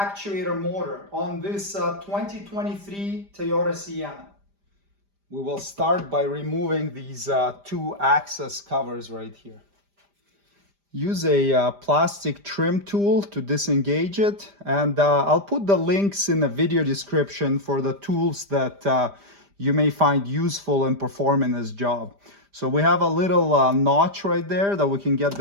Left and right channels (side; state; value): left; late; 5.0 ms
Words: motor on this 2023 Toyota Sienna. We will start by removing these two access covers right here. Use a plastic trim tool to disengage it, and I'll put the links in the video description for the tools that you may find useful in performing this job. So we have a little notch right there that we can get